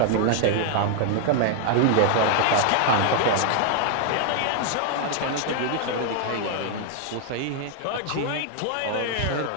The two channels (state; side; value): different; both; correlation 0.00